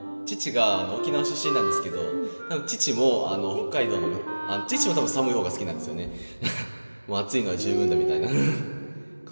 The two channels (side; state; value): both; inverted; correlation -1.00